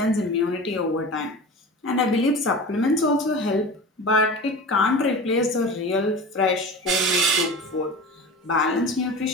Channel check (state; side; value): normal; both; correlation 0.33